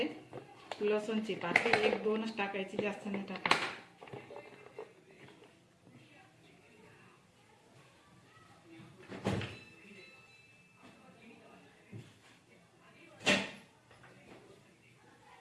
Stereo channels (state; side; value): identical; both; correlation 1.00